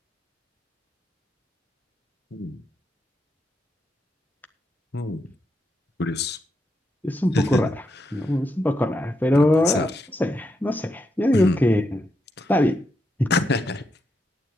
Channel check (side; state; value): both; normal; correlation 0.82